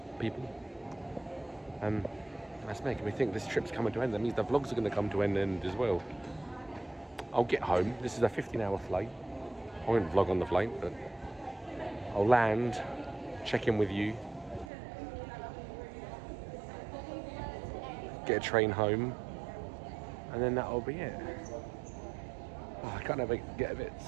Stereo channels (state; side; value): drops out; left; at 14.7 s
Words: people. That's making me think this trip's coming to an end. That means the vlogs are going to come to an end as well. I'll get home. This is a 15-hour flight. I won't vlog on the flight, but I'll land, check in with you, get a train home, and then that'll be it. Oh, I kind of get a bit